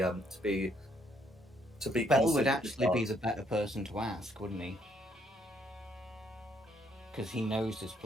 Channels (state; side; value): normal; both; correlation 0.70